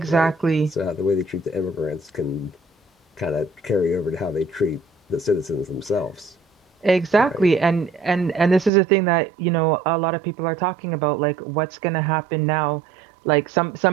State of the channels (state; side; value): drops out; left; at 8.7 s